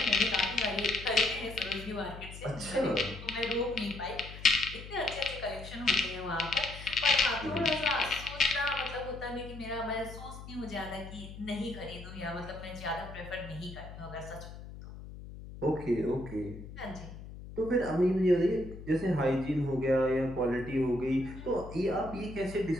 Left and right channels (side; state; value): left; noise; hum, 13 dB below the sound